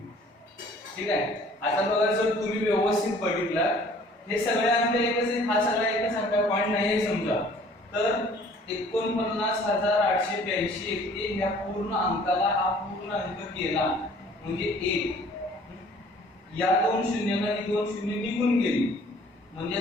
ठीक आहे. आता बघा जर तुम्ही व्यवस्थित बघितला, हे सगळे अंक एकच आहेत, हा सगळा एकच अंक आहे, पॉइंट नाही आहे समजा, तर 49,882 येते. ह्या पूर्ण अंकाला हा पूर्ण अंक केला म्हणजे 1. या 2 शून्यानं ही 2 शून्य निघून गेली, म्हणजे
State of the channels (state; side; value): normal; both; correlation 0.54